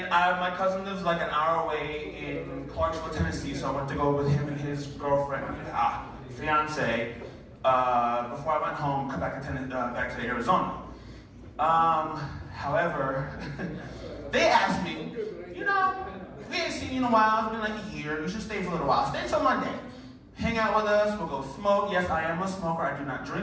my cousin lives like an hour away in Clarksville, Tennessee, so I went to go with him and his girlfriend, fiance, before I went home, come back to Arizona. However, they asked me, you know, we ain't seen you in a while, it's been like a year, you should stay for a little while. Stay until Monday. Hang out with us, we'll go smoke. Yes, I am a smoker, I do not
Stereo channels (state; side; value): identical; both; correlation 1.00